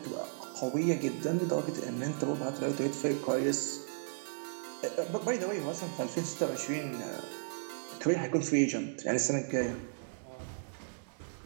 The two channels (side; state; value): left; silent; digital silence